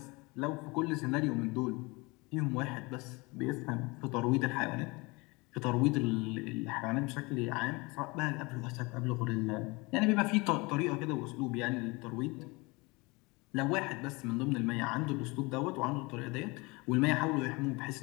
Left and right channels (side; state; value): right; quieter; 25.6 dB